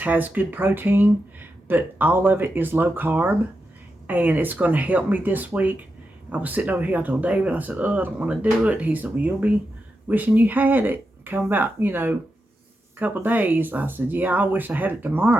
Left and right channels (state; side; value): normal; both; correlation 0.88